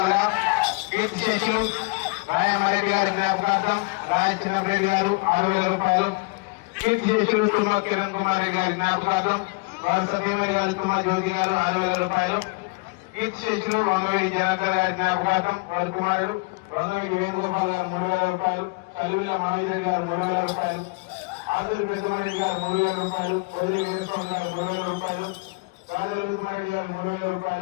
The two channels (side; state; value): right; quieter; 28.0 dB